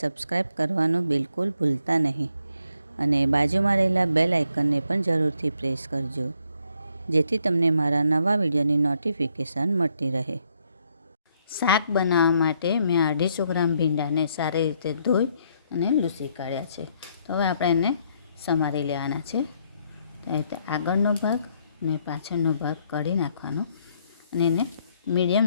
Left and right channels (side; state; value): both; inverted; correlation -0.73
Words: કરવાનું બિલકુલ ભૂલતા નહીં અને બાજુમાં રહેલા બેલ આઇકનને પણ જરૂરથી પ્રેસ કરજો, જેથી તમને મારા નવા વિડીયોની નોટિફિકેશન મળતી રહે। શાક બનાવવા માટે મેં 250 ગ્રામ ભીંડાને સારી રીતે ધોઈ અને લૂછી કાઢ્યા છે। તો હવે આપણે એને સમારી લેવાના છે। તો રીતે આગળનો ભાગ અને પાછળનો ભાગ કાઢી નાખવાનો અને એને મીડિયમ